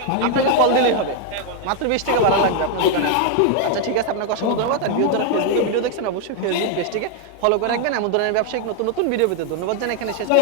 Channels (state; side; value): different; both; correlation 0.00